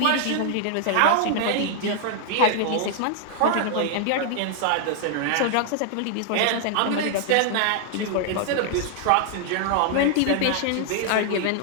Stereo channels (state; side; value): different; both; correlation 0.00